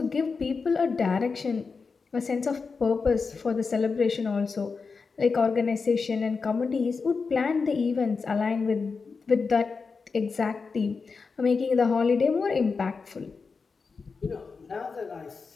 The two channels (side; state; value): right; quieter; 4.8 dB